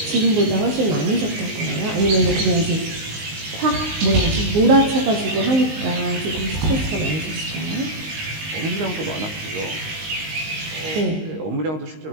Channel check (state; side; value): late; left; 19 ms